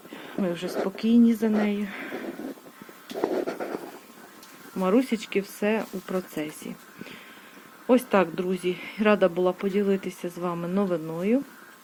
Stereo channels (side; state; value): both; identical; correlation 1.00